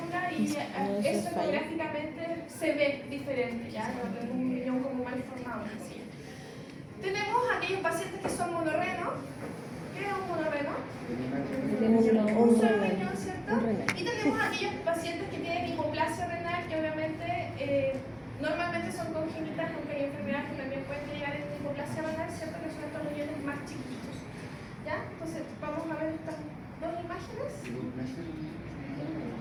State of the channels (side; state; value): both; identical; correlation 1.00